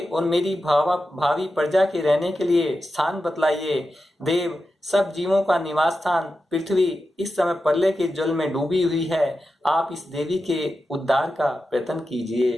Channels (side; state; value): both; normal; correlation 0.91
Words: और मेरी भावी प्रजा के रहने के लिए स्थान बतलाइए। देव, सब जीवों का निवास स्थान पृथ्वी इस समय प्रलय के जल में डूबी हुई है। आप इस देवी के उद्धार का प्रयत्न